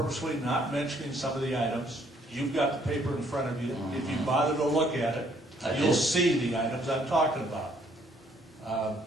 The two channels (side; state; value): both; normal; correlation 0.65